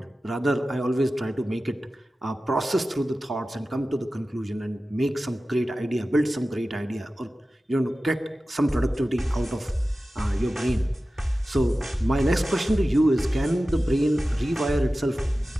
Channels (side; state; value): both; normal; correlation 0.95